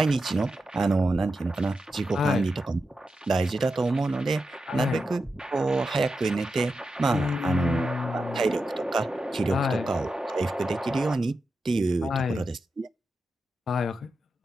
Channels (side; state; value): both; normal; correlation 0.89